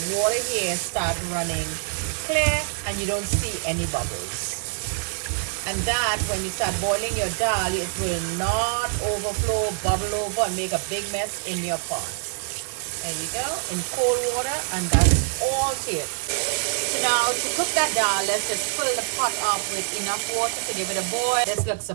water here start running clear and you don't see any bubbles. And that, when you start boiling your dal, it will not overflow, bubble over, and make a big mess in your pot. There you go, in cold water, and that's all to it. So now, to cook that dal, let's just fill the pot up with enough water to give it a boil. This looks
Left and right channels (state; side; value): silent; left; digital silence